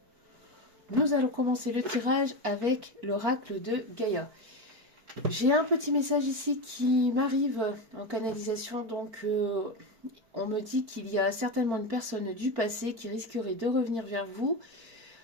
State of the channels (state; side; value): late; left; 4.4 ms